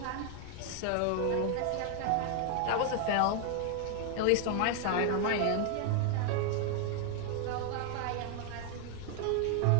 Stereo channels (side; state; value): both; different; correlation 0.00